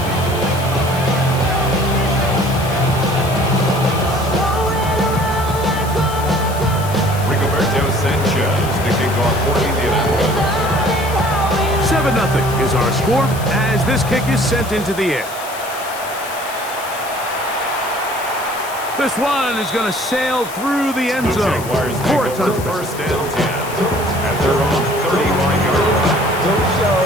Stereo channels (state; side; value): noise; left; hiss, 14 dB below the sound